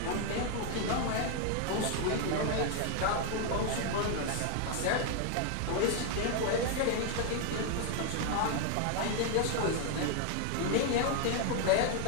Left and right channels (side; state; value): both; different; correlation 0.00